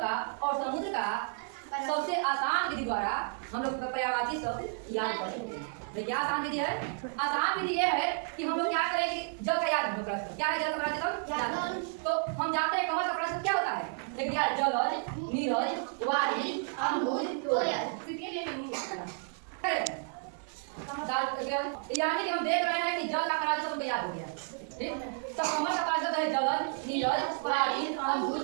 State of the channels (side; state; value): left; silent; 57 dB below the other